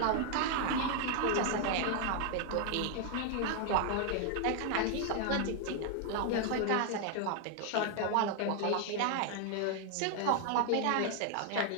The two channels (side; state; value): both; different; correlation 0.00